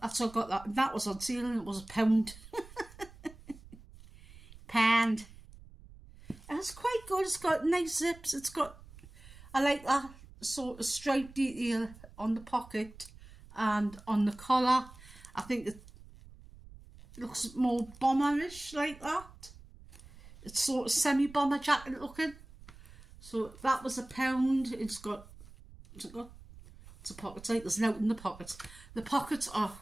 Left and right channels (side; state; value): right; noise; rumble, 20 dB below the sound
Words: that's how I got that. That was on sale and it was £1. Pound. And it's quite good. It's got nice zips. It's got, I like that sort of stripe detail on the pocket and on the collar. I think it looks more bomberish like that. It's sort of semi-bomber jacket looking. So that was £1. It's got pockets, like there's nothing in the pockets. The pockets are